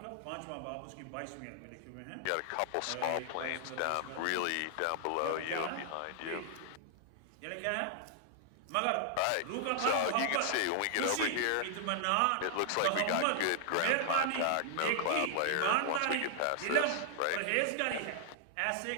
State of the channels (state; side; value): different; both; correlation 0.00